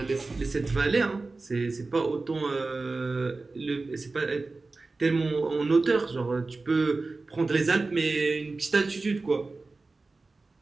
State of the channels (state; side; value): quieter; left; 3.6 dB